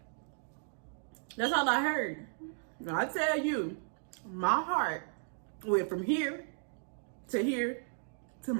that's all I heard. Now I tell you, my heart went from here to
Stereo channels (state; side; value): silent; left; digital silence